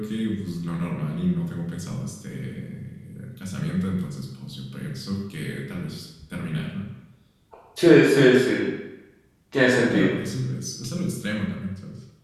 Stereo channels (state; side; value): identical; both; correlation 1.00